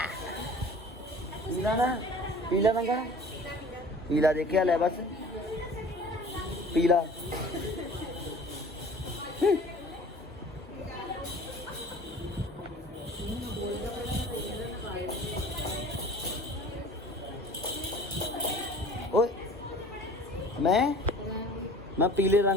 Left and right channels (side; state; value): both; normal; correlation 0.45